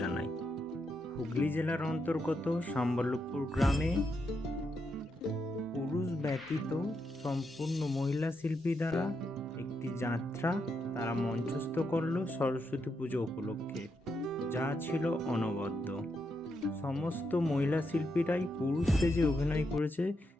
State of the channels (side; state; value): both; normal; correlation 0.82